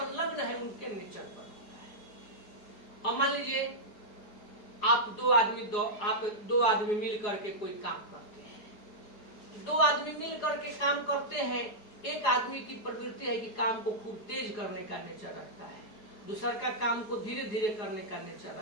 है उनके नेचर पर होता है। अब मान लीजिए आप दो आदमी मिल करके कोई काम करते हैं। दो आदमी मिल करके काम करते हैं, एक आदमी की प्रवृत्ति है कि काम को खूब तेज करने का नेचर रखता है, दूसरा का काम को धीरे धीरे करने का नेचर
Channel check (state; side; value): late; right; 4.8 ms